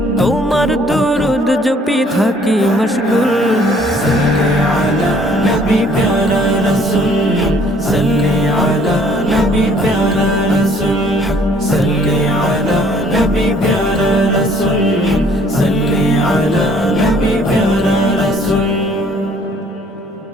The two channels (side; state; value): both; normal; correlation 0.59